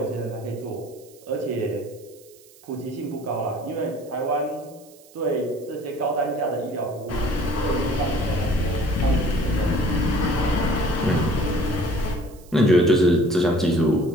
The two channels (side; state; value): right; noise; hiss, 25 dB below the sound